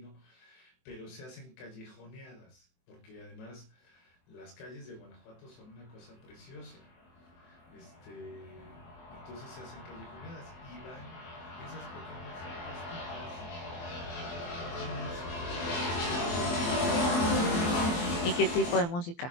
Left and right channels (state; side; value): late; right; 23 ms